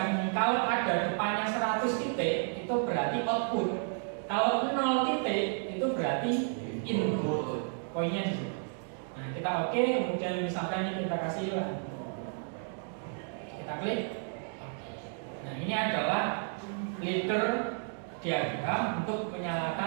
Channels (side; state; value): left; silent; 56 dB below the other